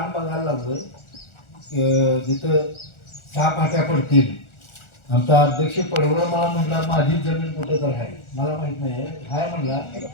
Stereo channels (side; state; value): right; late; 1.4 ms